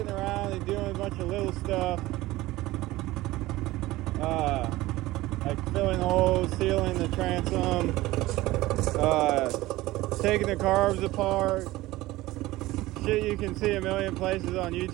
around and doing a bunch of little stuff. Like filling holes, sealing the transom, taking the carbs apart. Shit you can see a million places on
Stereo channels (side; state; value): left; quieter; 18.1 dB